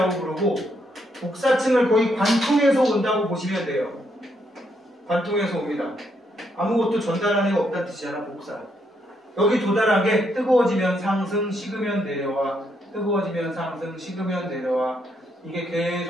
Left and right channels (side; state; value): both; normal; correlation 0.76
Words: 부르고 복사층을 거의 관통해서 온다고 보시면 돼요. 관통해서 옵니다. 아무것도 전달하는 애가 없다는 뜻이잖아, 복사. 여기 도달한 게 뜨거워지면 상승, 식으면 내려와. 뜨거워지면 상승, 식으면 내려와. 이게